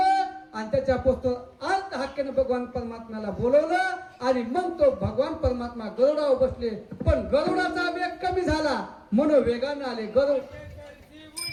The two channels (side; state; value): both; identical; correlation 1.00